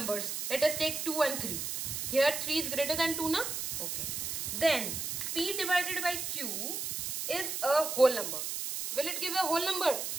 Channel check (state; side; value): noise; right; hiss, 3 dB below the sound